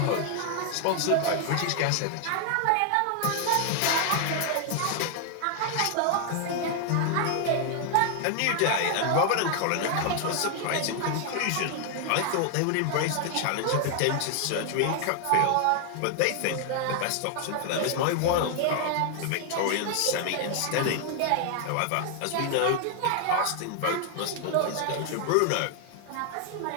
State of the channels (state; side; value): different; both; correlation 0.00